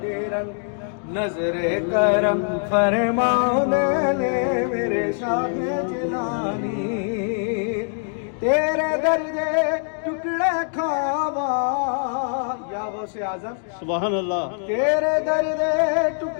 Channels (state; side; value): silent; right; 63 dB below the other